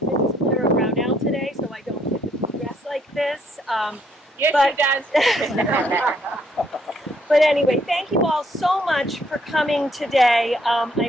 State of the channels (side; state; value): both; normal; correlation 0.69